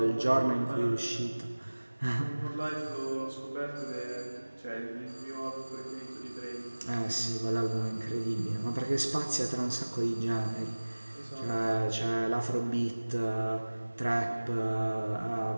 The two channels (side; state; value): both; inverted; correlation -1.00